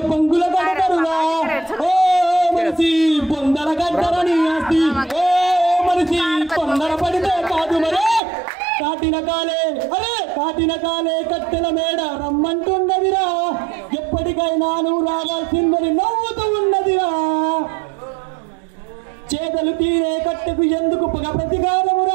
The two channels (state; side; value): drops out; left; at 8.2 s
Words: పంగుల కడతారురా. ఓ మనిషి పొందర గడ్డరని ఆస్తి, ఓ మనిషి తొందర పడితే కాదు మరి. కాటిన కాలే కట్టెల మేడ రమ్మంటున్నదిరా, ఎప్పటికైనా నువ్వు రావాల్సిందని నవ్వుతూ ఉన్నదిరా. చేతలు తీరే కట్టెకు ఎందుకు పగ